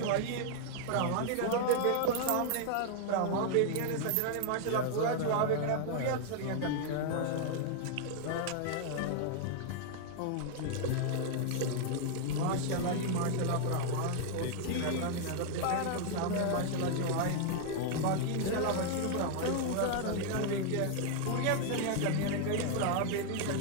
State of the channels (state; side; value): different; both; correlation 0.00